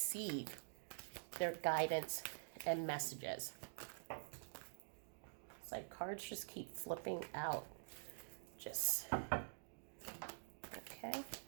their guidance and messages. It's like cards just keep flipping out. Okay.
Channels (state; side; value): silent; left; digital silence